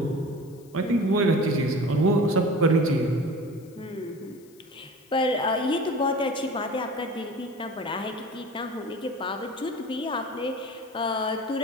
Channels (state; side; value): noise; left; hiss, 28 dB below the sound